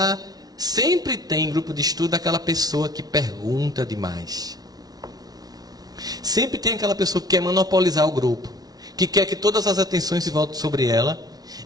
Sempre tem grupo de estudo aquela pessoa que pergunta demais. Sempre tem aquela pessoa que quer monopolizar o grupo, que quer que todas as atenções se voltem sobre ela,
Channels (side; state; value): left; late; 0.19 ms